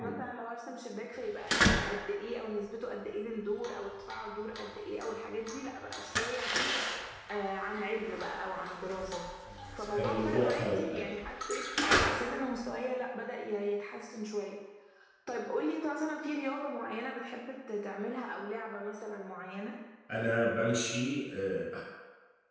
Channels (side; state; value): both; identical; correlation 1.00